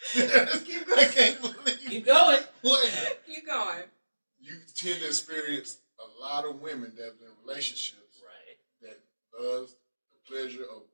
Keep going. I can't believe. Keep going. What? Keep going. You tend to experience a lot of women that have been in relationships that loves the pleasure of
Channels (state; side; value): inverted; both; correlation -1.00